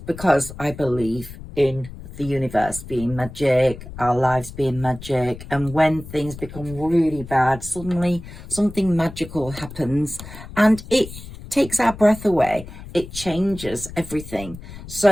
I believe in the universe being magic, our lives being magic, and when things become really bad, suddenly something magical happens and it takes our breath away. It changes everything.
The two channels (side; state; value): left; noise; rumble, 14 dB below the sound